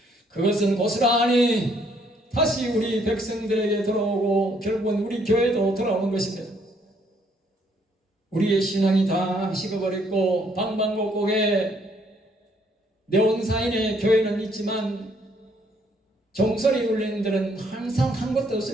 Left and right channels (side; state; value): both; normal; correlation 0.68